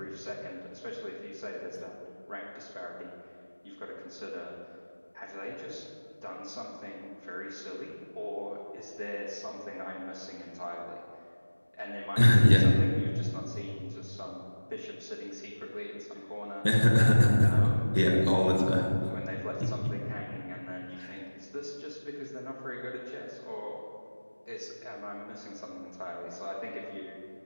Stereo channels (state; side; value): inverted; both; correlation -1.00